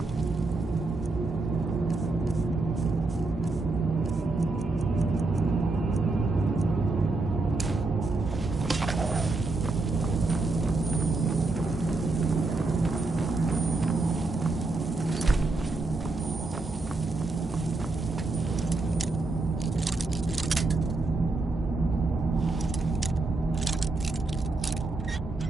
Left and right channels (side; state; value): left; quieter; 3.4 dB